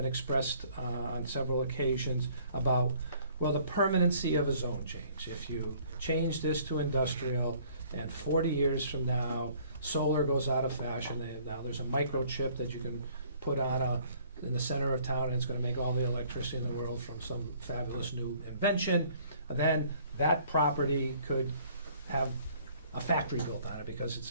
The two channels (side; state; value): both; inverted; correlation -0.58